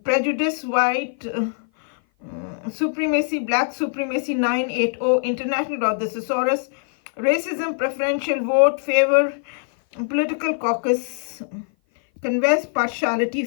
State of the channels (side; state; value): right; silent; 56 dB below the other